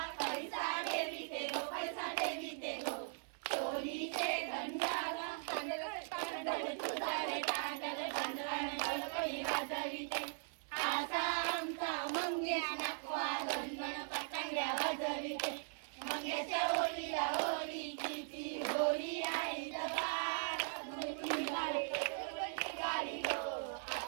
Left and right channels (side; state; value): left; silent; 51 dB below the other